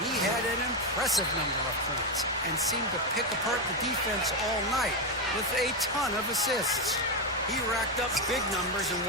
had an impressive number of points and seemed to pick apart the defense all night with a ton of assists. He racked up big numbers in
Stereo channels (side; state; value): both; normal; correlation 0.08